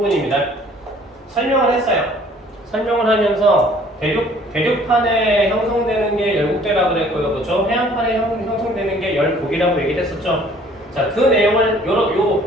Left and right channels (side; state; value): both; normal; correlation 0.56